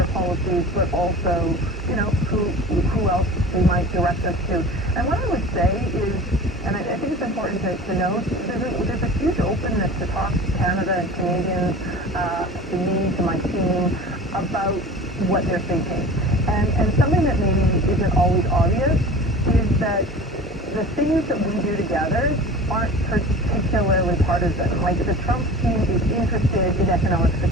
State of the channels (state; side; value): normal; both; correlation 0.38